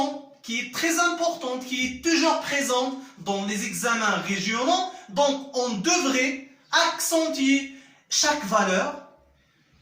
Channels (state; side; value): identical; both; correlation 1.00